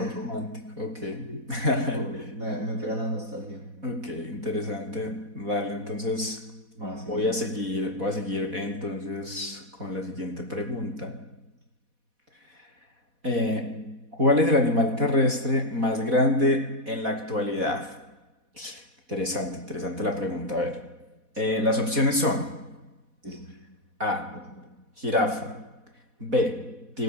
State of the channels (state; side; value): late; left; 4.1 ms